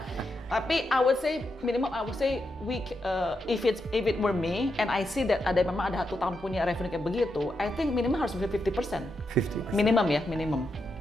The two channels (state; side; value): normal; both; correlation 0.84